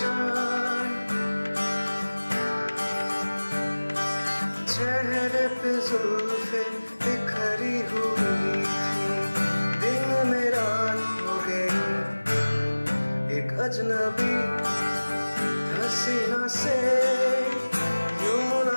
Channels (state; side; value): inverted; both; correlation -1.00